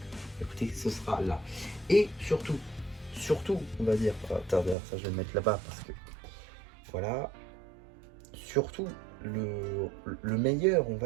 écoutez, ce sera là. Et surtout, on va dire, d'ailleurs ça je vais le mettre là-bas parce que, voilà, surtout le meilleur, on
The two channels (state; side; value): drops out; left; at 4.8 s